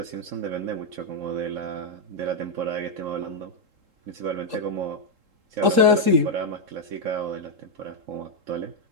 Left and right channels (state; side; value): late; left; 3.7 ms